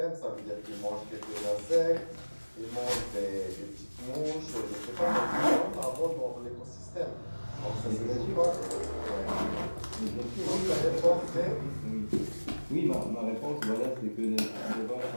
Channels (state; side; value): inverted; both; correlation -1.00